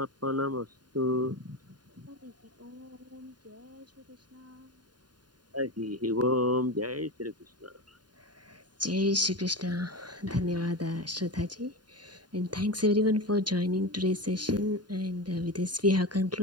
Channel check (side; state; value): left; late; 0.70 ms